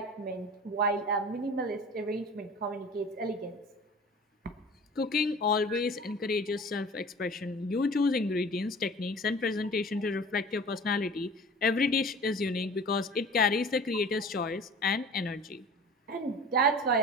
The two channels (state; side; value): normal; both; correlation 0.42